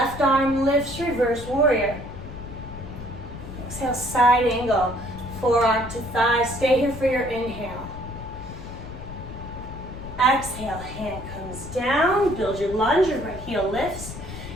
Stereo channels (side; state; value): left; noise; rumble, 11 dB below the sound